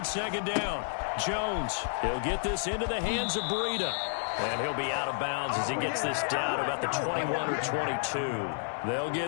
2nd down. Jones, he'll get this into the hands of Breida. And he'll be out of bounds as he gets this down about the 21 or 22. They'll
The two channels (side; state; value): right; silent; digital silence